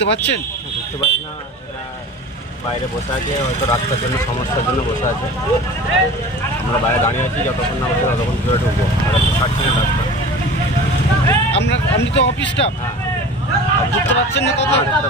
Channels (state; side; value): normal; both; correlation 0.38